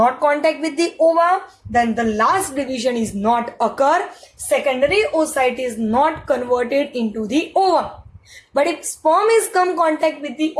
contact with the ova, then the last division is not occur. Secondary oocyte is not converted into the ova. But if sperm is come contact with the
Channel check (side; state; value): both; identical; correlation 1.00